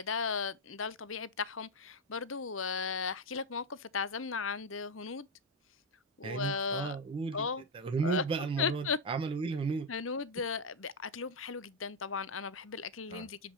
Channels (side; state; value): both; normal; correlation 0.03